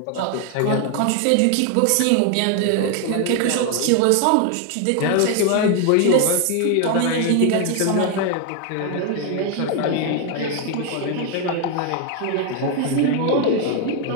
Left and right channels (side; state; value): both; different; correlation 0.01